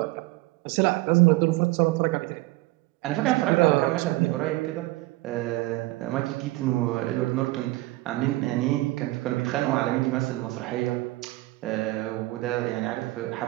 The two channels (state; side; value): quieter; left; 20.1 dB